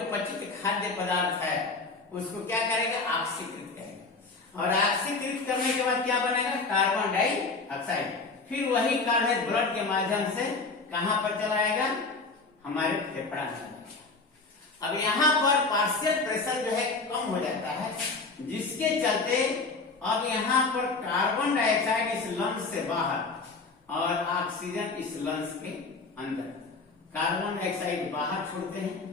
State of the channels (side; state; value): right; quieter; 3.9 dB